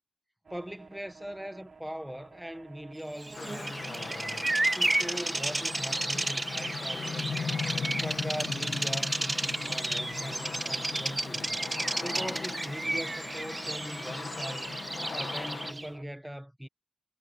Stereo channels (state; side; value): normal; both; correlation 0.96